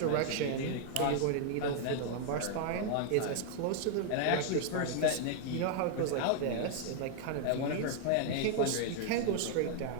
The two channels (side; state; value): both; different; correlation 0.00